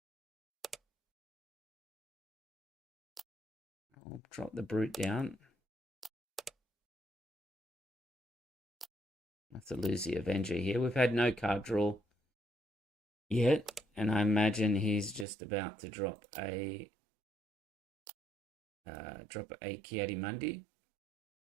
I'll drop the Brute down. I have to lose the Avenger here. We've had no card draw yet, and I imagine he's just about to drop a Ki-Adi-Mundi.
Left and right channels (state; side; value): drops out; left; at 15.2 s